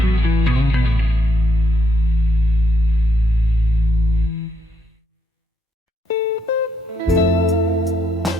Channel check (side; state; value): both; normal; correlation 0.75